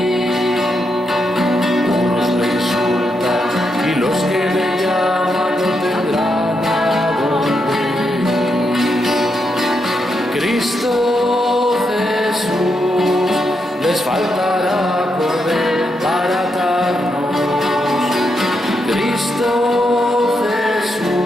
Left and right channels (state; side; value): normal; both; correlation 0.82